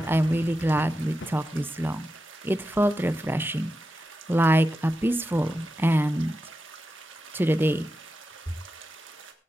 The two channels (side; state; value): both; normal; correlation 0.90